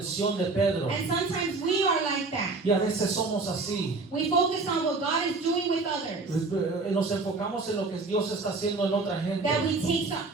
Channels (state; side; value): quieter; left; 3.7 dB